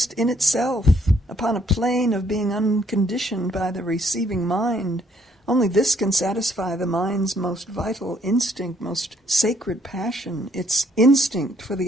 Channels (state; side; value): normal; both; correlation 0.67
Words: in itself, upon a plane of being unconditioned by the receiving mind. Only this can satisfy the mind's most vital instinct, most sacred passion, its instinct for